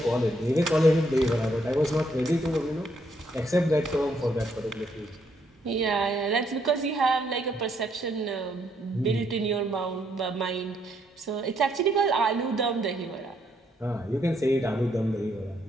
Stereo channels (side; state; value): both; normal; correlation 0.73